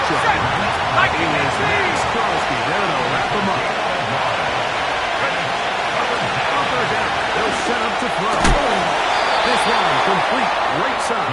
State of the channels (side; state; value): both; identical; correlation 1.00